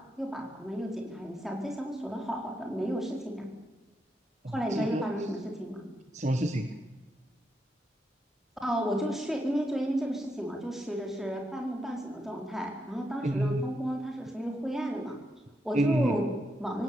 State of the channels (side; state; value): both; normal; correlation 0.82